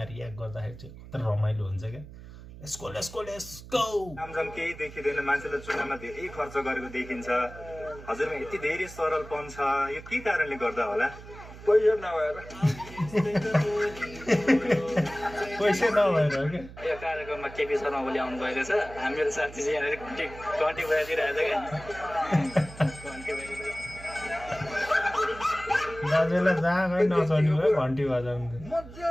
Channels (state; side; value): noise; right; hum, 16 dB below the sound